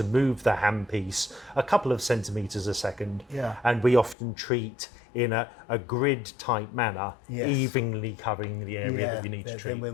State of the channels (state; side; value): drops out; right; at 4.2 s